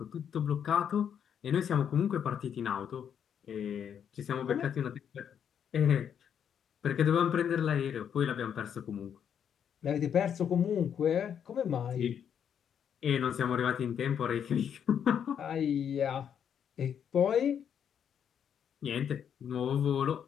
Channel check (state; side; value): quieter; right; 8.4 dB